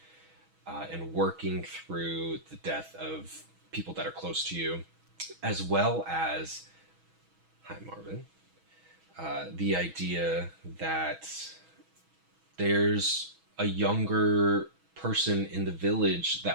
and working through the death of people that are close to you, as well as, hi Marvin, the idea that there's a younger person in the village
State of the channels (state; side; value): late; left; 6.2 ms